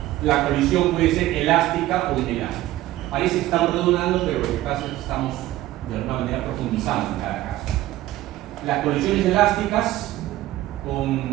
la colisión puede ser elástica o inelástica. Parece que estamos redundando, pero lo que pasa es que estamos de alguna manera profundizando en cada caso. Las colisiones elásticas con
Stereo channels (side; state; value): left; quieter; 15.5 dB